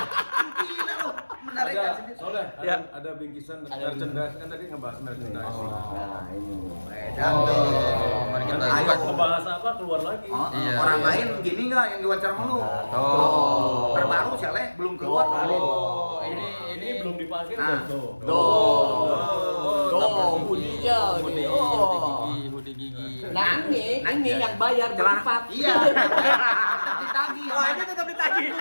lu, menargetkan Ada, sendiri. soalnya Ya. ada bingkisan merchandise kan tadi ngebahas merchandise. Nah, ini. Mari kita Ayo. buka. Ngebahas apa keluar lagi. Iya. Orang lain gini nggak yang diwawancara sama lu? Oh. Terbaru Saleh belum keluar baru. Oh, ini belum dipakai Ah. udah tuh. Budinya ini. Oh. Hoodie gigi. Nah, ini yang bayar berempat. Iya. Ditagih. Oh, ini tetap ditagih.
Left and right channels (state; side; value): inverted; both; correlation -1.00